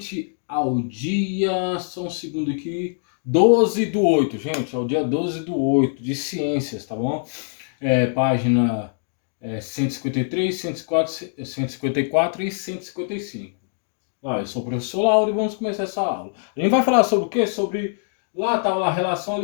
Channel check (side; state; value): right; silent; digital silence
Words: ao dia, só um segundo aqui, 12/8, gente, é o dia 12/8 de ciências, tá bom? Página 153, 104, 154 e 155. Eu sou o professor Lauro e vamos começar essa aula. A gente vai falar sobre o quê? Lá estava a relação